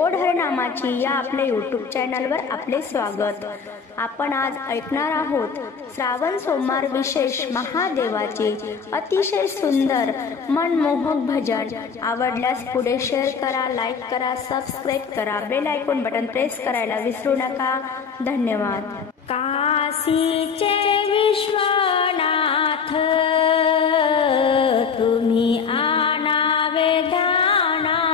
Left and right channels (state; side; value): quieter; right; 5.9 dB